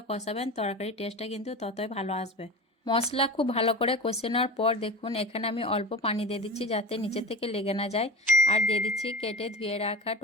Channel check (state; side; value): normal; both; correlation 0.31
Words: কষাবেন তরকারির টেস্টটা কিন্তু ততই ভালো আসবে। মশলা খুব ভালো করে কষে নেওয়ার পর দেখুন এখানে আমি অল্প পানি দিয়ে দিচ্ছি, যাতে নিচে থেকে লেগে না যায়। আর দিয়ে দিচ্ছি কেটে ধুয়ে রাখা